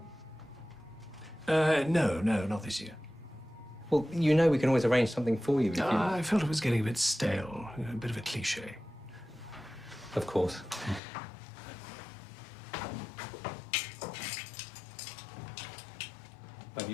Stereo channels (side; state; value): right; drops out; at 11.0 s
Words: No, not this year. Well, you know we can always arrange something for you if you... I felt it was getting a bit stale, a bit of a cliché. Of course. Well,